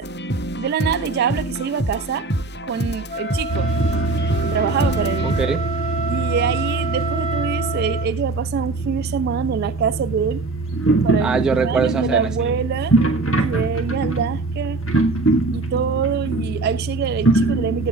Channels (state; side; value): quieter; left; 3.6 dB